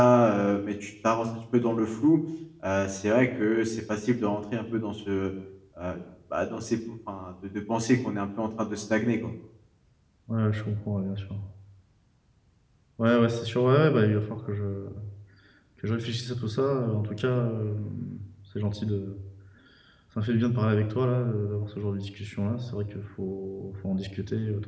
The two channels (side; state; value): both; identical; correlation 1.00